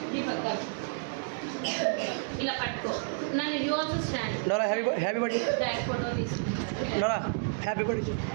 Deepak, come. ఇలా పట్టుకో నన్ను you also stand Nora happy birthday back photo తీసుకుంటాను Nora happy birthday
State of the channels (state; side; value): silent; left; digital silence